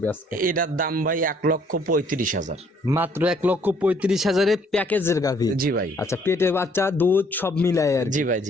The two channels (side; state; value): both; normal; correlation 0.63